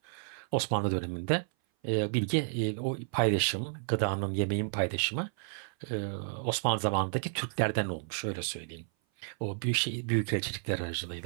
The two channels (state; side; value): silent; left; 56 dB below the other